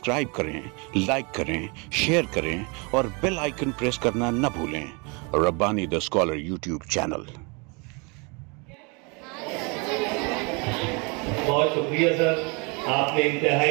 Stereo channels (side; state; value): left; quieter; 31.0 dB